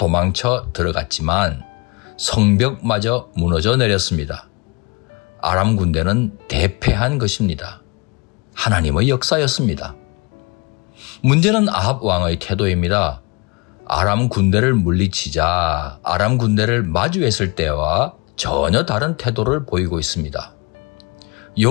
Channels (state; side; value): quieter; right; 29.1 dB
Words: 들어갔지만 성벽마저 무너져 내렸습니다. 아람 군대는 대패한 것입니다. 하나님의 역사였습니다. 문제는 아합 왕의 태도입니다. 아람 군대를 물리치자 아람 군대를 마주했을 때와 전혀 다른 태도를 보이고 있습니다.